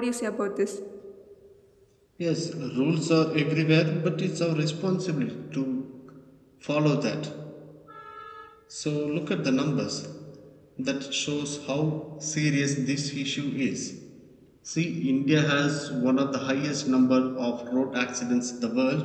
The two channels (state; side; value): identical; both; correlation 1.00